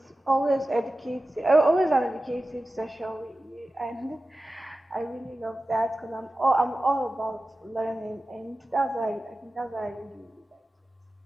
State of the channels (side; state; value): both; normal; correlation 0.94